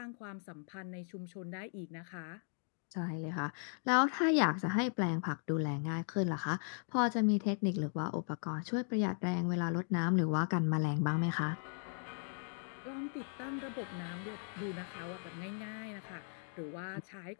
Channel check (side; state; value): right; silent; 53 dB below the other